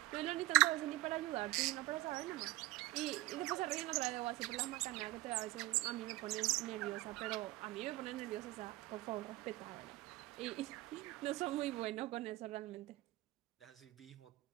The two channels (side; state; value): left; quieter; 18.3 dB